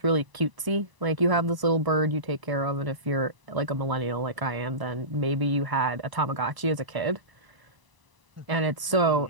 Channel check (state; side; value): late; left; 1.0 ms